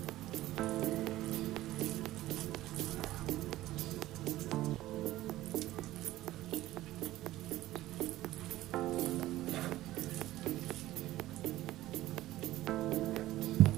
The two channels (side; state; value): left; quieter; 15.8 dB